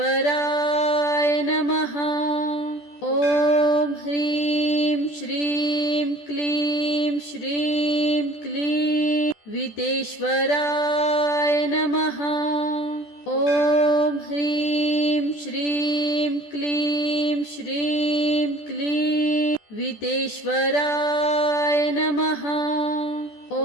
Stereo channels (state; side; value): late; right; 14 ms